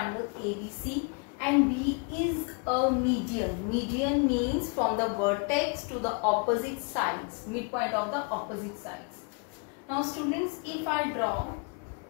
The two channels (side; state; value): right; quieter; 36.2 dB